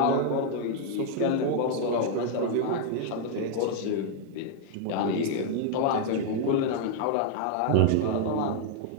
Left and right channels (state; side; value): different; both; correlation 0.00